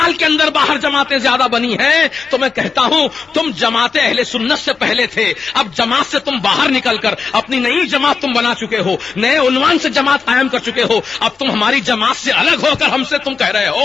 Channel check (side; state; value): right; quieter; 5.2 dB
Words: کے اندر باہر جماعتیں زیادہ بنی ہیں۔ تو میں کہتا ہوں تم جماعت اہل سنت سے پہلے تھے، اب جماعت سے تم باہر نکل کر اپنی نئی جماعت تم بنا چکے ہو، نئے عنوان سے جماعت قائم کر چکے ہو، اب تم ہماری جماعت سے الگ ہو کر ہم سے تم کہہ رہے